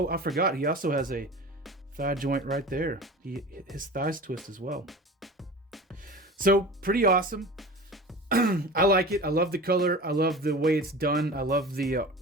I forgot. He also has a thigh joint right there. His thighs twist as well. So pretty awesome. I like it. I love the color. I love the way it's done. I love the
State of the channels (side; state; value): both; normal; correlation 0.36